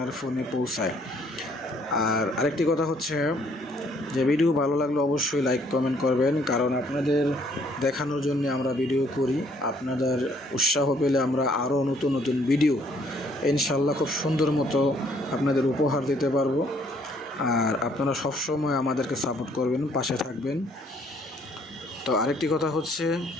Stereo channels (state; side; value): normal; both; correlation 0.64